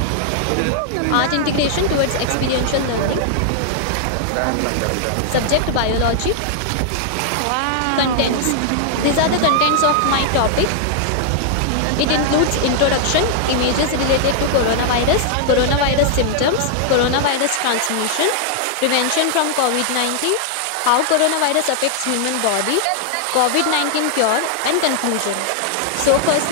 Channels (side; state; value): both; different; correlation 0.00